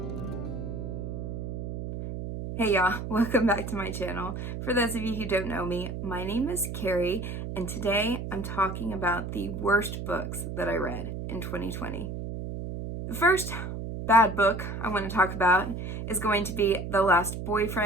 Hey y'all, welcome back to my channel. For those of you who don't know me, my name is Carrie, and today I'm talking about the worst books that I read in 2020. The first bad book I want to talk about is going to be The Last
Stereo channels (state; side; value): noise; right; hum, 6 dB below the sound